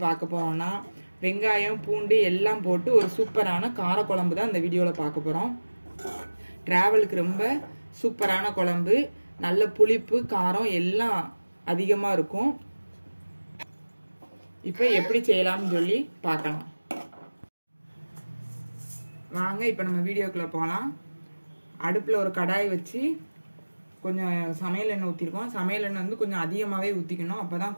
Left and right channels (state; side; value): inverted; both; correlation -1.00